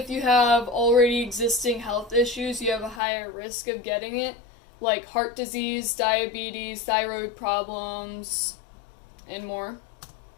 you have already existing health issues, you have a higher risk of getting it, like heart disease, diabetes, thyroid problems, and more.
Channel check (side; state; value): right; drops out; at 3.0 s